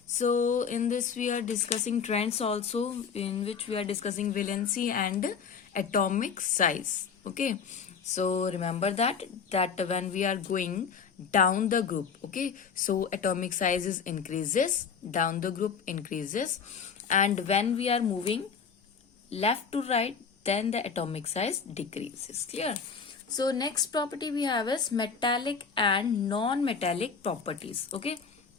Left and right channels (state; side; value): quieter; right; 6.1 dB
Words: so in this we are discussing trends also, in which we are discussing valency and atomic size. Okay, so remember that when we are going down the group, okay, so atomic sizes increases, down the group increases, and when we are moving left to right, then the atomic size decreases. Clear? So next property we have is metallic and non-metallic properties. Okay,